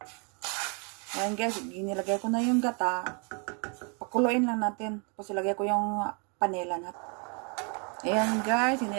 Ayan guys, ginilagay ko na yung gata. Pakuluin lang natin. Tapos ilagay ko yung panela natin. Ayan guys,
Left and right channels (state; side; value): quieter; left; 35.8 dB